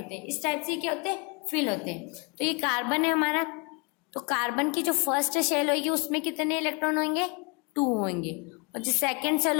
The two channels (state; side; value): quieter; right; 32.4 dB